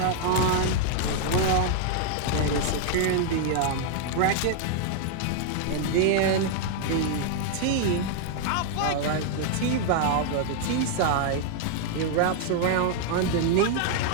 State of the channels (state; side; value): different; both; correlation 0.00